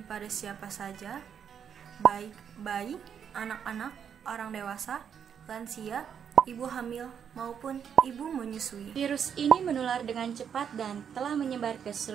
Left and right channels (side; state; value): left; quieter; 7.9 dB